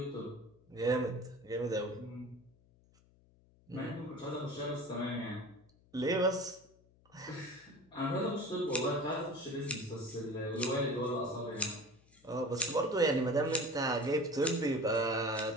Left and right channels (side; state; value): left; noise; hum, 29 dB below the sound